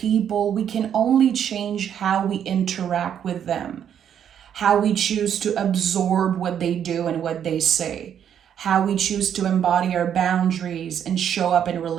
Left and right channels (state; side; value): quieter; left; 9.0 dB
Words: We can only change how we interact with them, how we choose to absorb what they do and what they say, how we choose to embody our boundaries and show up in